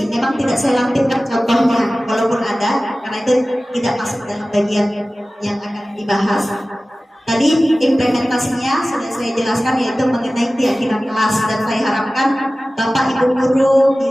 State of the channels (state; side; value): normal; both; correlation 0.96